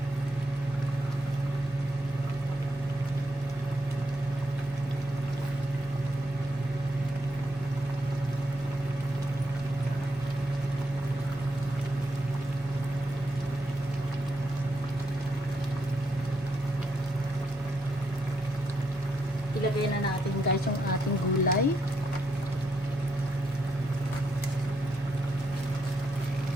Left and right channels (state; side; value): normal; both; correlation 0.79